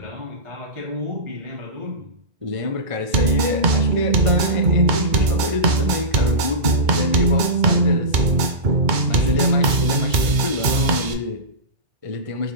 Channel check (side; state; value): left; late; 2.2 ms